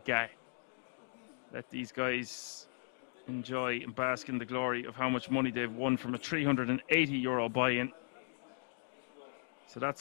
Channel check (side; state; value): right; silent; digital silence